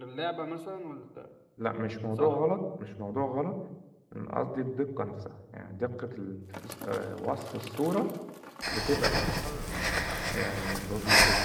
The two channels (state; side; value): identical; both; correlation 1.00